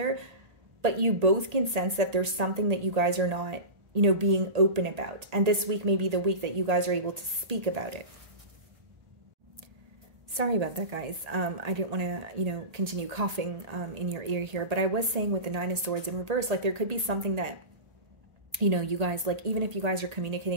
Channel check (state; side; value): late; left; 1.8 ms